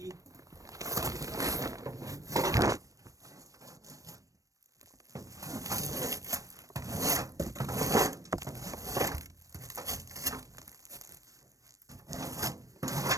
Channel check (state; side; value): late; left; 0.16 ms